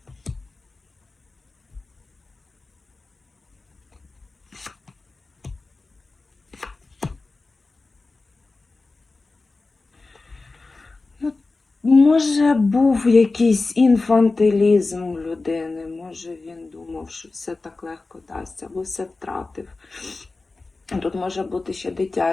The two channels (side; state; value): right; quieter; 3.6 dB